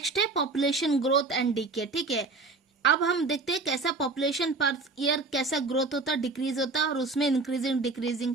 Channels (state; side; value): quieter; left; 3.7 dB